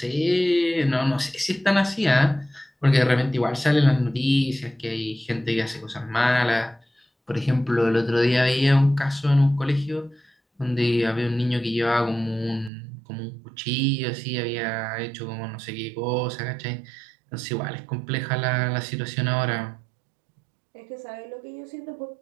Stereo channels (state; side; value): drops out; left; at 12.7 s